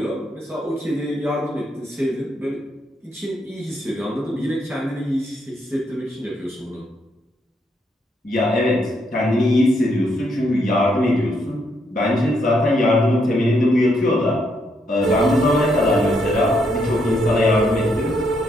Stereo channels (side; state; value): both; normal; correlation 0.76